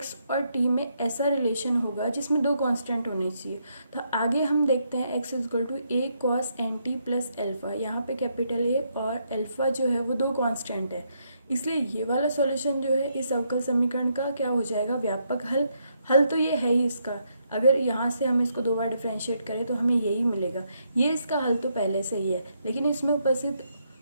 और t में ऐसा रिलेशन होगा जिसमें दो कांस्टेंट होने चाहिए। तो आगे हम देखते हैं x is equal to a cos nt plus alpha, यहाँ पे कैपिटल A और एल्फा जो है वो दो कांस्टेंट है, इसलिए ये वाला सॉल्यूशन जो है इस अवकल समीकरण का क्या हो जाएगा, व्यापक हल। हल तो ये है ही इसका, अगर यहाँ से हम इसको 2 बार डिफ्रेंशिएट करें तो हमें यही मिलेगा। ये इसका हल तो पहले से ही है, लेकिन इसमें उपस्थित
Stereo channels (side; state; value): both; inverted; correlation -0.76